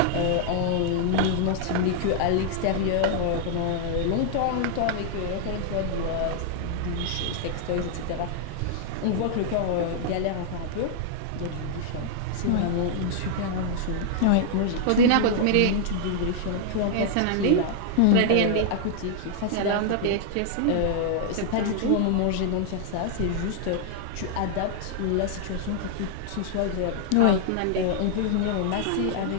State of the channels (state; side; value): different; both; correlation -0.01